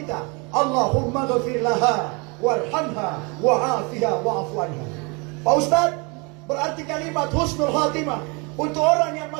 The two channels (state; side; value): quieter; left; 30.2 dB